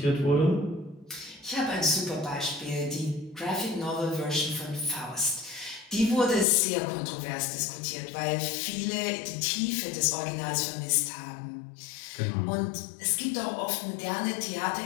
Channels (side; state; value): right; drops out; at 6.5 s